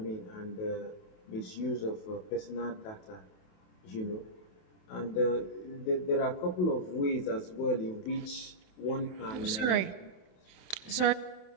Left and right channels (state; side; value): late; right; 28 ms